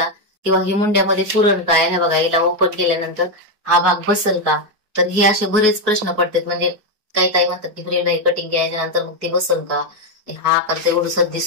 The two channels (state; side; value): late; left; 4.7 ms